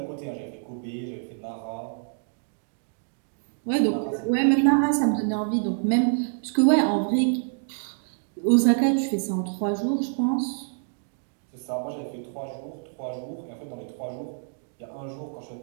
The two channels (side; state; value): left; silent; digital silence